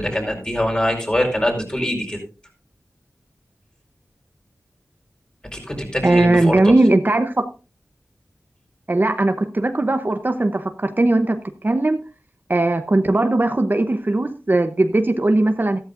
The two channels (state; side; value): normal; both; correlation 0.95